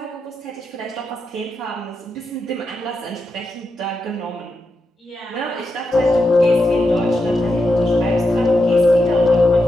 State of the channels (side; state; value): both; normal; correlation 0.86